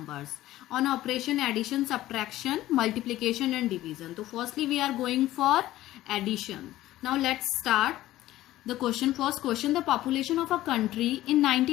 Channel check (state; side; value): quieter; right; 15.2 dB